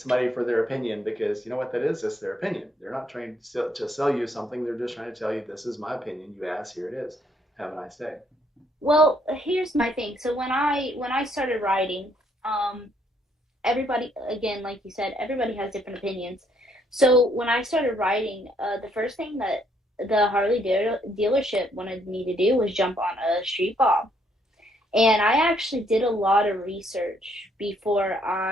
for their opinion because you know what that is? It's their opinion. They're not trying to sell you something. They're just trying to tell you this is my opinion. You asked, here it is. Have a nice day. Well, here's my thing. So when I started riding, um, everybody, again, like you said, everybody has different opinions. So when I started riding, the first thing that the Harley dealership wanted me to do was jump on a street bob. And I actually did a lot of research before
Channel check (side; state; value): both; normal; correlation 0.70